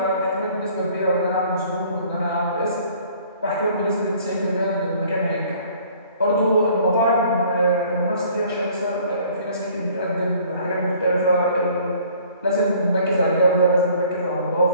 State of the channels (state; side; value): inverted; both; correlation -0.55